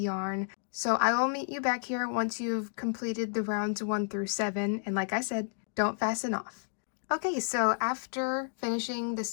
So I will meet you back here once you've completed the rounds 1 through 7. And like I said, don't fasten off. Okay, so after finishing the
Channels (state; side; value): silent; right; digital silence